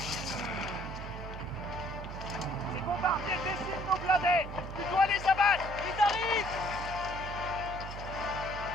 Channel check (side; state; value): right; noise; hum, 9 dB below the sound